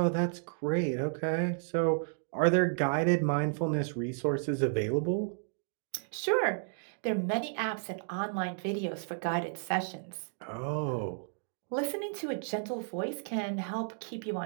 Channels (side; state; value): left; silent; digital silence